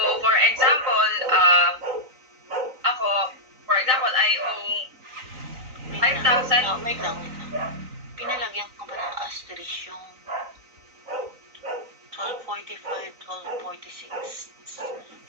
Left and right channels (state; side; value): late; left; 3.9 ms